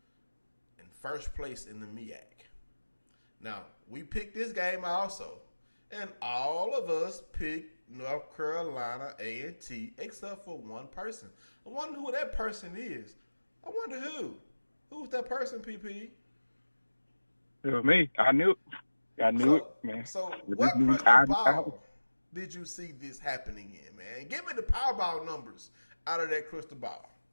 in first place in the MEAC. Now, we picked this game also, and all of us picked North Carolina A&T except for one person. I wonder who that person is. I wonder who. Who's that person, PP? It was me. I knew it, man. So what crystal ball did you see this happening in, man? Give me the Powerball numbers out of that crystal ball.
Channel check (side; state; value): both; inverted; correlation -1.00